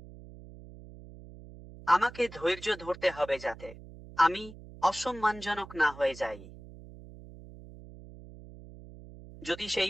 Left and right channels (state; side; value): noise; right; hum, 17 dB below the sound